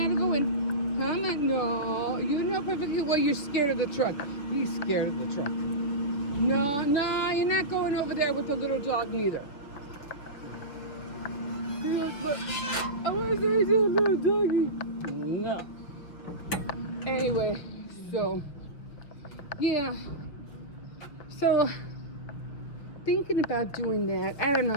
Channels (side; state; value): right; late; 6.1 ms